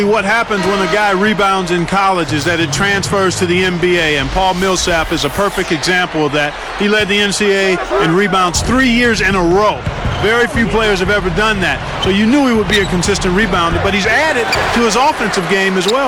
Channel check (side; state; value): both; identical; correlation 1.00